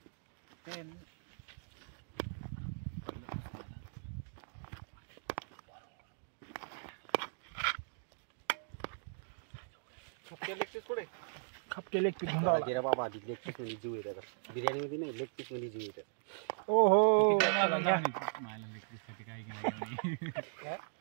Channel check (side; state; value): left; silent; digital silence